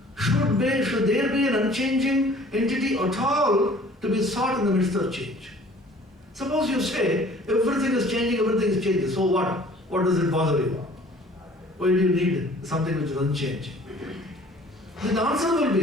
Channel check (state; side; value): normal; both; correlation 0.51